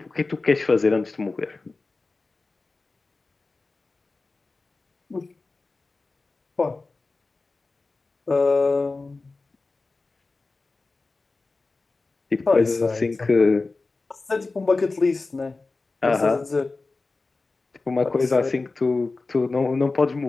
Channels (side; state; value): right; quieter; 3.6 dB